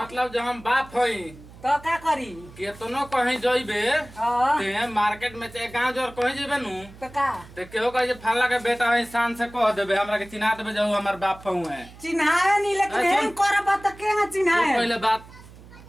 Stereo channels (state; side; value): noise; right; hum, 20 dB below the sound